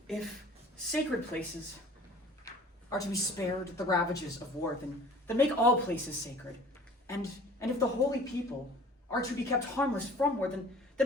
If sacred places are to be spared the ravages of war, then make all places sacred. And if the holy people are to be kept harmless from war, then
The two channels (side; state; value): both; normal; correlation 0.47